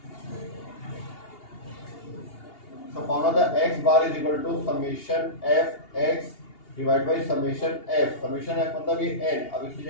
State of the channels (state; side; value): late; right; 2.8 ms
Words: So found out the x bar is equal to summation f x divided by summation f। summation f मतलब ये n, अब इसकी